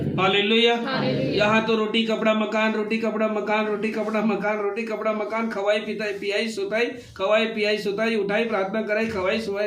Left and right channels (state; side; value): identical; both; correlation 1.00